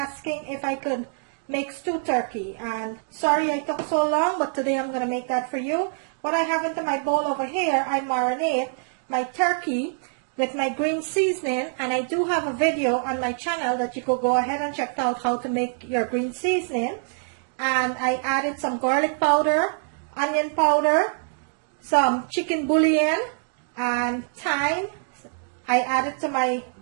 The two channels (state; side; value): silent; left; digital silence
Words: if I could make stewed turkey, and sorry I took so long, but today I'm going to make that for you. What I have into my bowl over here, I marinate my turkey with my green seasoning, and I do have a video on my channel that you could go ahead and check out how to make your green seasoning. And I added some garlic powder, onion powder, some chicken bouillon, and thyme. I added to my,